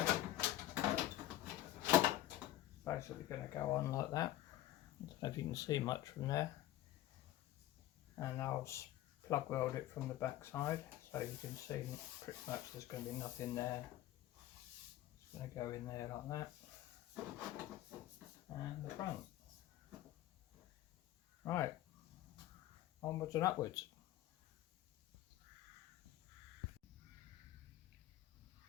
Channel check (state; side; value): quieter; right; 14.3 dB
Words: Basically going to go on like that. I don't know if you can see much from there, and I'll plug weld it from the back side, so you can see pretty much there's going to be nothing there. It's going to go in there like that, and the front. Right, onwards and upwards.